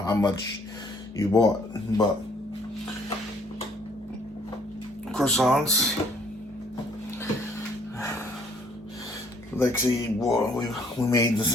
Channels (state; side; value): normal; both; correlation 0.63